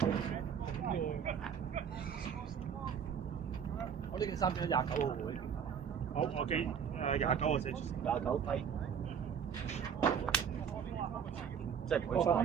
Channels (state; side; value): quieter; left; 7.5 dB